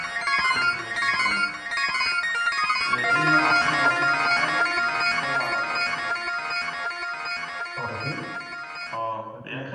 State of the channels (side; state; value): both; identical; correlation 1.00